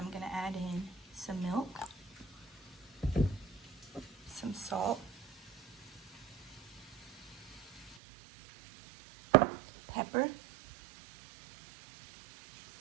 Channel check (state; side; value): drops out; left; at 8.0 s